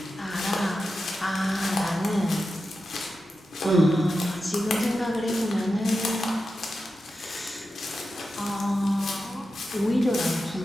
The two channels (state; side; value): normal; both; correlation 0.91